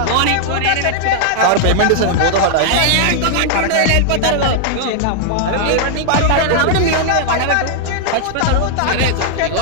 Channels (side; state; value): both; different; correlation -0.01